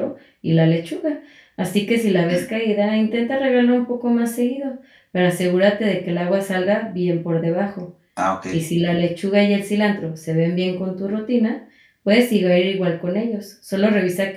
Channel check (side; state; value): both; identical; correlation 1.00